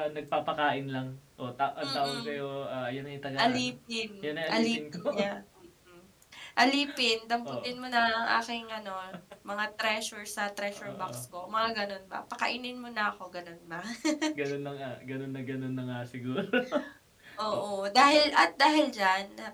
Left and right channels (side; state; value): both; identical; correlation 1.00